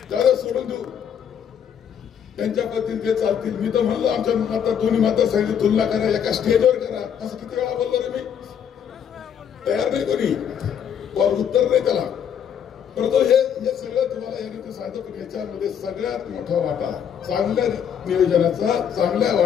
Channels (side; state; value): right; quieter; 8.3 dB